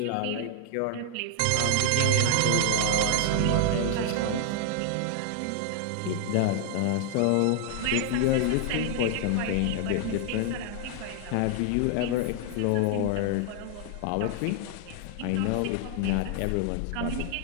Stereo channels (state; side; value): different; both; correlation 0.00